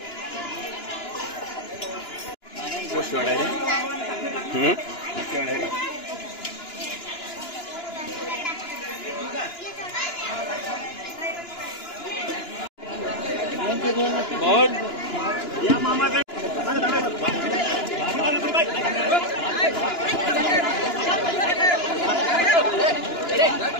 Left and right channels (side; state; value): right; late; 2.9 ms